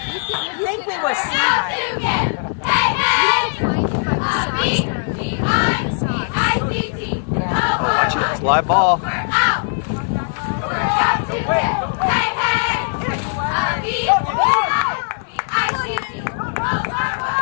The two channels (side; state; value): right; silent; digital silence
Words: You think we were seeing? Watch it, it's live ball.